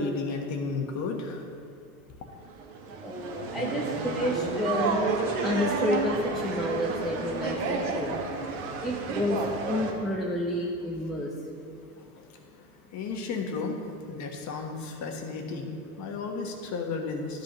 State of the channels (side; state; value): both; normal; correlation 0.31